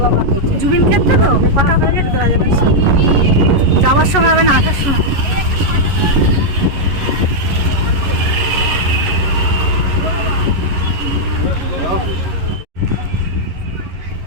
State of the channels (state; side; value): late; left; 11 ms